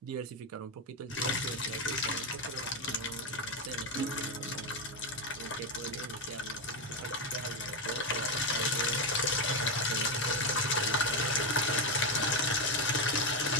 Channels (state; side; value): normal; both; correlation 0.09